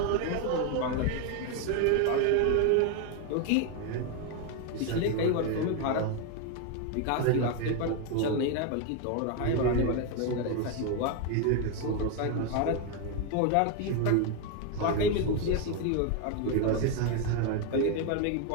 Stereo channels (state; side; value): different; both; correlation 0.01